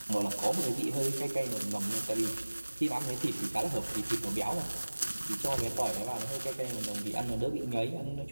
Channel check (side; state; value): both; inverted; correlation -1.00